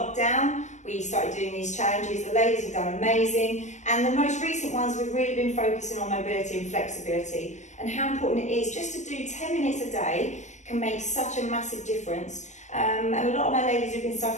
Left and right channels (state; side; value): late; right; 0.34 ms